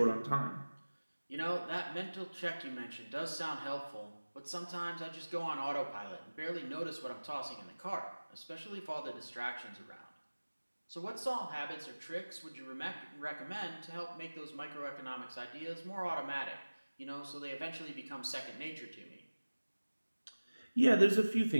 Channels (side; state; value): both; inverted; correlation -1.00